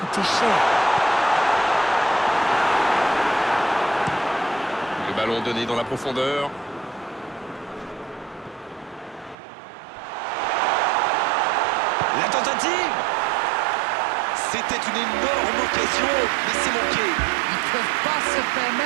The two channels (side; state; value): left; drops out; at 9.3 s